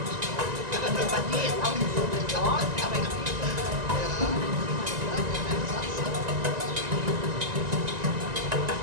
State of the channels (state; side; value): late; left; 1.9 ms